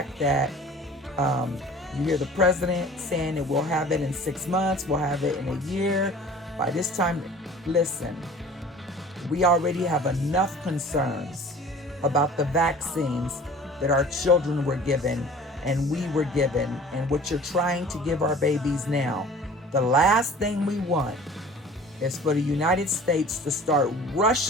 that you hear the president saying that we'll have it in 6 months, we'll have it in a year. By this time, listen, we already have enough concerns about the vaccines that our children were given and we were given, and what you're trying to give our babies now. The last thing we want is for the United States to start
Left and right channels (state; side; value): normal; both; correlation 0.45